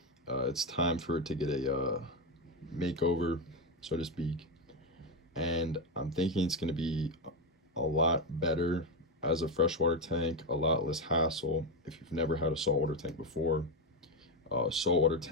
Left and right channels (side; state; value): both; normal; correlation 0.10